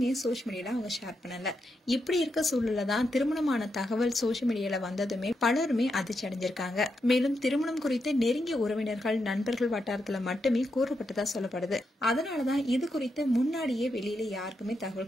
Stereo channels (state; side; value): normal; both; correlation 0.84